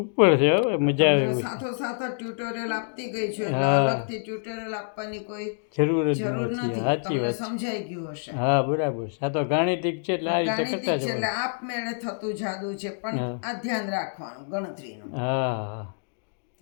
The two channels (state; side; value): silent; right; digital silence